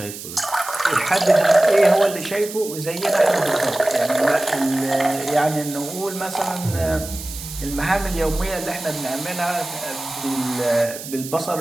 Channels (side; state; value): right; noise; hiss, 11 dB below the sound